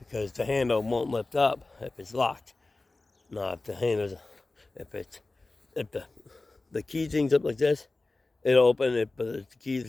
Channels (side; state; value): right; quieter; 3.2 dB